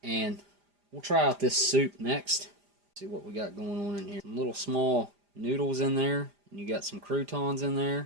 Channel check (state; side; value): late; left; 5.0 ms